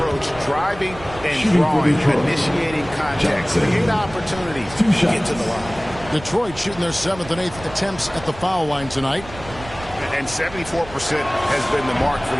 driving and drawing, initiating contact, create opportunities to get to the line. Detroit shooting their 7th and 8th attempts at the foul line tonight. And 74% has been the mark for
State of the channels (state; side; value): noise; right; rumble, 16 dB below the sound